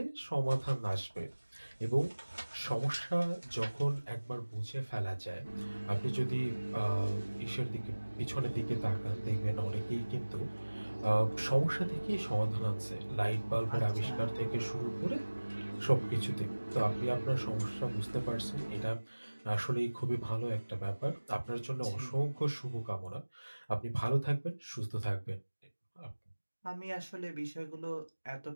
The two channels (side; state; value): both; inverted; correlation -1.00